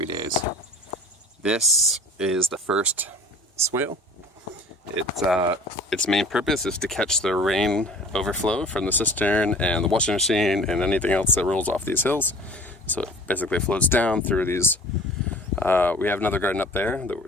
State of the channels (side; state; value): both; normal; correlation 0.45